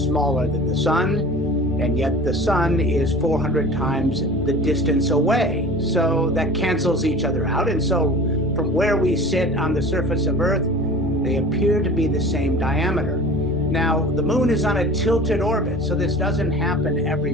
smaller than the sun, and yet the sun is 400 times the distance away. So that cancels each other out. And so from where we sit on the surface of Earth, they appear to be the same diameter. Now, the moon is on a tilted orbit, so this doesn't happen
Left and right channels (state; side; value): normal; both; correlation 0.40